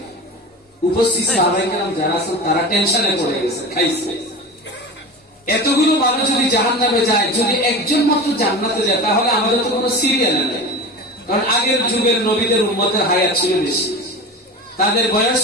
উপস্থিত সাহাবায়ে কেরাম যারা আছেন তারা টেনশনে পড়ে গেছে, খাইছে। এতগুলো মানুষ যদি জাহান্নামে যায়, যদি একজন মাত্র জান্নাতে যায়, তাহলে আমাদের তো কোনো সিরিয়াল নেই। কারণ আগের যুগের নবীদের উম্মতের হায়াত ছিল বেশি, তাদের বয়স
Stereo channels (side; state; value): both; normal; correlation 0.30